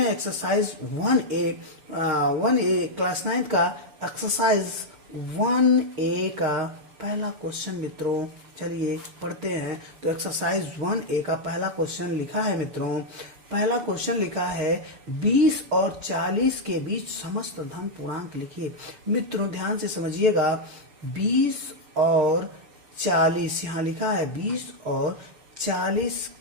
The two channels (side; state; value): left; late; 6.9 ms